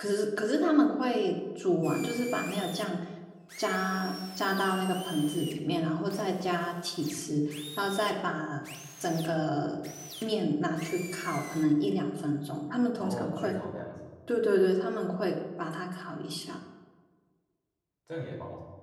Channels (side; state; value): both; identical; correlation 1.00